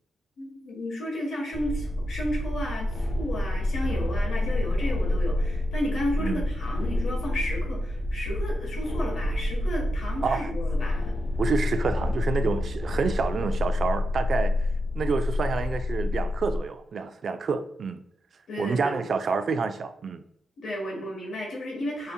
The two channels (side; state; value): both; normal; correlation 0.86